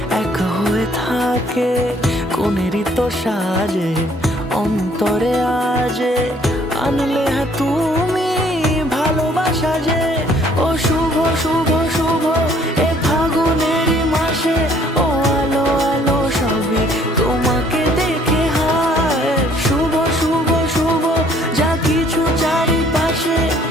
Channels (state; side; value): normal; both; correlation 0.60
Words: এক হয়ে থাকে। কোনেরই তো সাজে অন্তরে আজে, আনলে হ্যাঁ তুমি ভালোবাসা যে। ও শুভ শুভ শুভ এ ফাগুনেরই মাসে, ও আলো আলো সবই তোমাকে দেখে হায়। শুভ শুভ শুভ যা কিছু চারিপাশে,